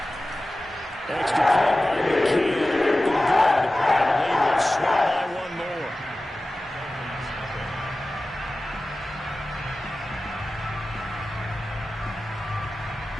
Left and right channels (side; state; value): both; normal; correlation 0.95